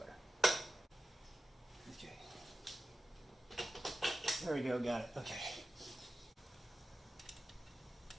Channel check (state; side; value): normal; both; correlation 0.93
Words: Okay. There we go, got it. Okay.